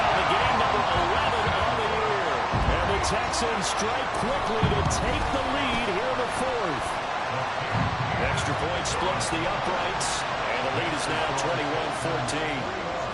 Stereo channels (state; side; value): identical; both; correlation 1.00